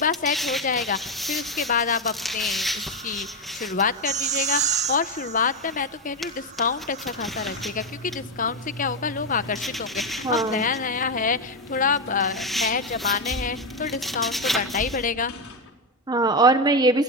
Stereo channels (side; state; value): both; normal; correlation 0.09